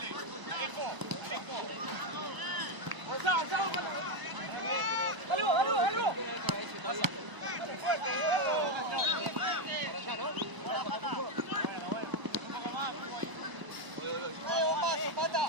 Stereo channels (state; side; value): late; left; 1.0 ms